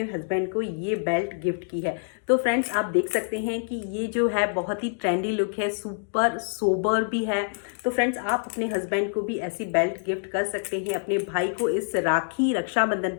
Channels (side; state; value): right; silent; digital silence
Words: हस्बैंड को ये बेल्ट गिफ्ट की है। तो फ्रेंड्स, आप देख सकते हैं कि ये जो है बहुत ही ट्रेंडी लुक है, सुपर सोबर भी है। तो फ्रेंड्स, आप अपने हस्बैंड को भी ऐसी बेल्ट गिफ्ट कर सकते हैं, अपने भाई को इस रक्षाबंधन